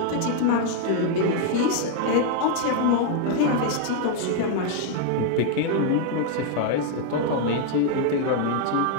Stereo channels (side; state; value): both; different; correlation 0.00